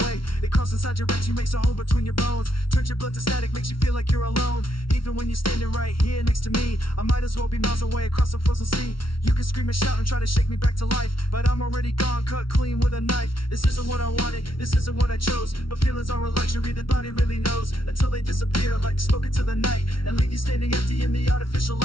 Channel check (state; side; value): late; right; 0.74 ms